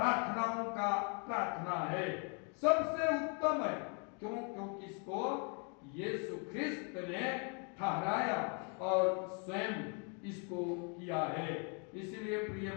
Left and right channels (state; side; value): quieter; right; 37.6 dB